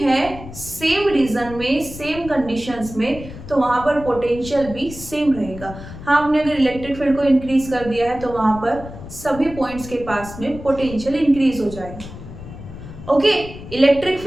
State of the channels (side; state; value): left; noise; rumble, 13 dB below the sound